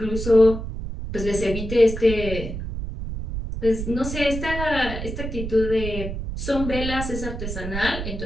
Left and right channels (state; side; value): noise; right; rumble, 6 dB below the sound